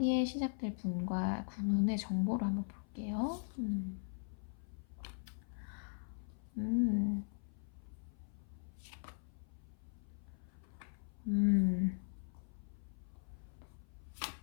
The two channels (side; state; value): right; silent; 51 dB below the other